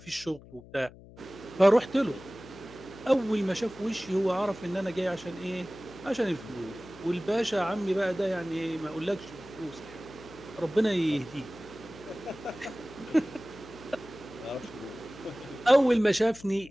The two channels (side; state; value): left; noise; hum, 20 dB below the sound